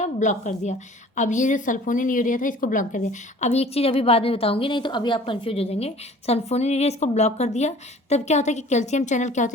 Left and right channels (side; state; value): both; normal; correlation 0.48